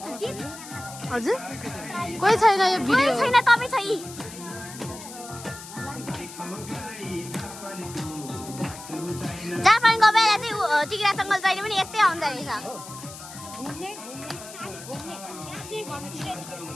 हजुर कोही छैन यो भिडियो छैन तपाईँ छै जापानको बेला चाहिँ टिग्रा जङ्गल जहिले पनि यतै आउँदो रहेछ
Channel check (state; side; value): noise; left; hiss, 14 dB below the sound